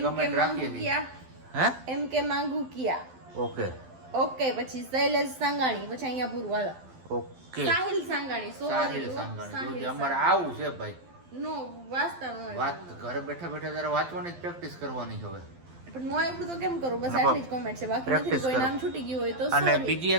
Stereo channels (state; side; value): late; left; 12 ms